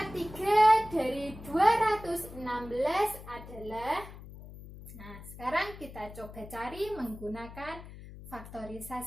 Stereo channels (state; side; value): noise; left; hum, 15 dB below the sound